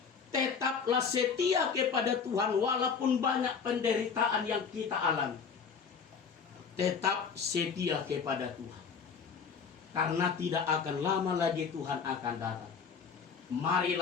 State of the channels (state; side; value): quieter; right; 6.1 dB